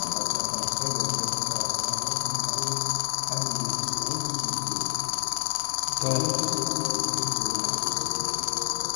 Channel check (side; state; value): right; quieter; 37.6 dB